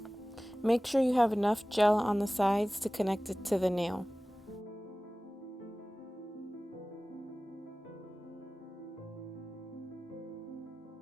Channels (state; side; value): normal; both; correlation 0.97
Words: Make sure you have enough gel on the sides to connect it to the nail.